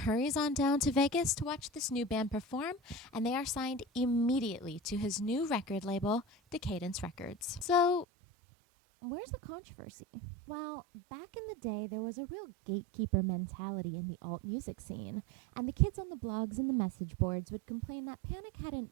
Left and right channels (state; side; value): drops out; left; at 8.1 s